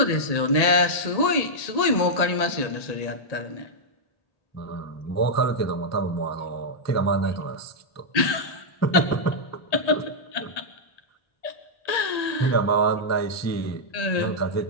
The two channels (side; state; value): right; late; 1.8 ms